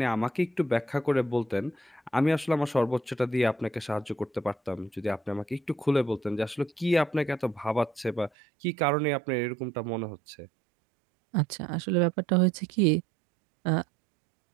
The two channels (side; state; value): left; drops out; at 8.3 s